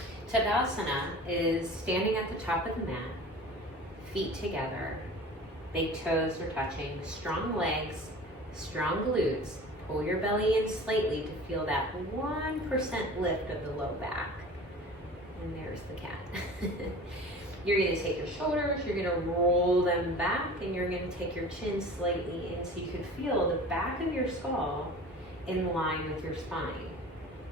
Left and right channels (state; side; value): normal; both; correlation 0.40